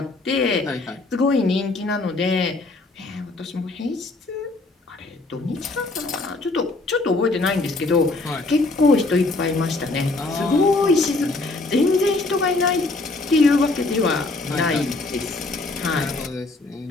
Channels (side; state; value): right; quieter; 3.2 dB